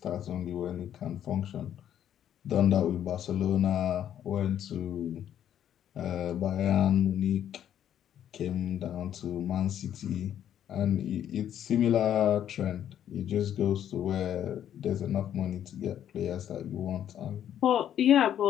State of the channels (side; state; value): right; quieter; 10.3 dB